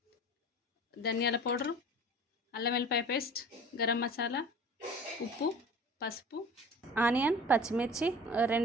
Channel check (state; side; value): normal; both; correlation 0.41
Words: ధనియాల పౌడరు, అల్లం వెల్లిపాయ పేస్ట్, గరం మసాలా, ఉప్పు, పసుపు, ఆనియన్, పచ్చిమిర్చి,